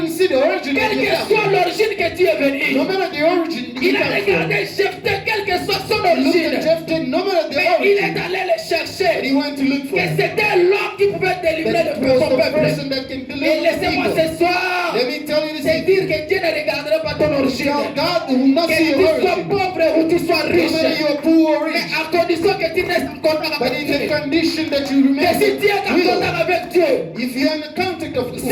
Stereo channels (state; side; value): identical; both; correlation 1.00